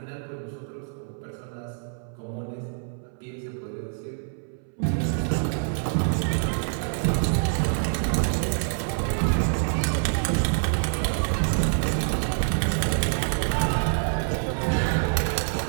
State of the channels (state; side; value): silent; left; 61 dB below the other